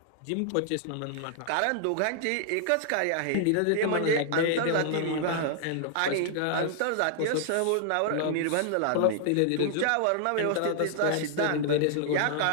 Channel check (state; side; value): different; both; correlation 0.00